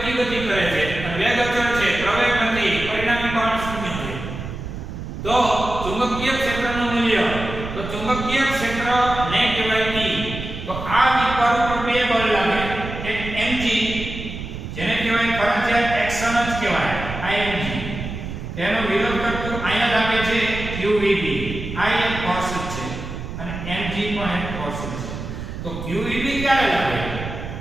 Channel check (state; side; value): noise; right; rumble, 8 dB below the sound